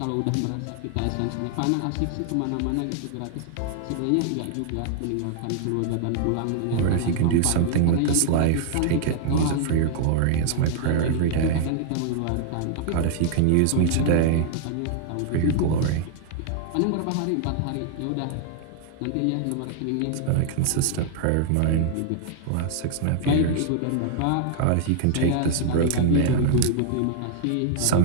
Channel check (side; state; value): both; different; correlation 0.00